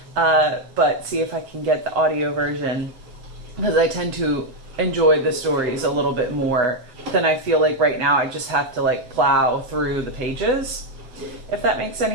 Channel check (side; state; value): left; late; 8.2 ms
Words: but see if I can get the audio version, because I tend to enjoy the stories a little bit more than I feel like right now I just have to like plow through the pages, if that makes